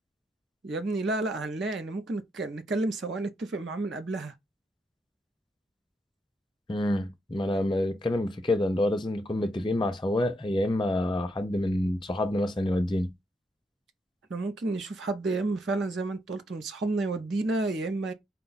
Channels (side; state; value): both; normal; correlation 0.78